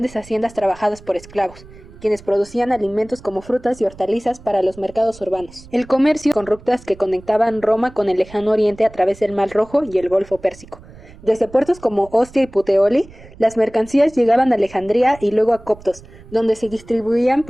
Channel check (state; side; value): noise; right; rumble, 21 dB below the sound